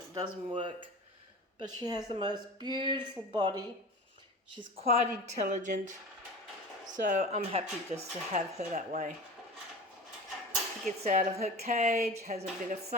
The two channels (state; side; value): normal; both; correlation 0.34